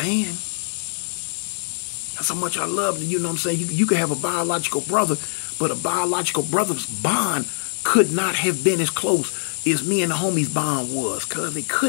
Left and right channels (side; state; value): right; silent; digital silence